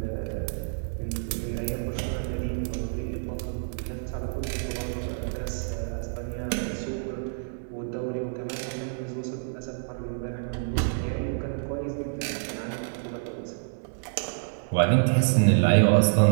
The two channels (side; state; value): left; silent; 59 dB below the other